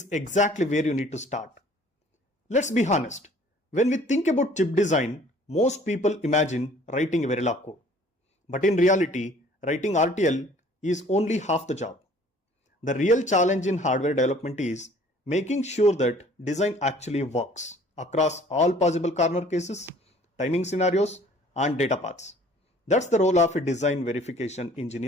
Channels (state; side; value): normal; both; correlation 0.54